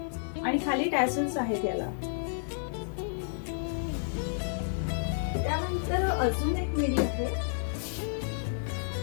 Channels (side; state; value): right; silent; 57 dB below the other